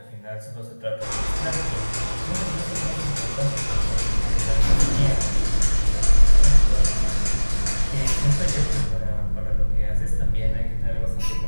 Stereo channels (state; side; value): inverted; both; correlation -1.00